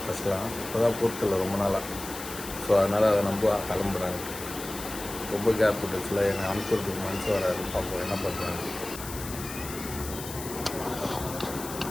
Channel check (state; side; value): noise; left; hiss, 10 dB below the sound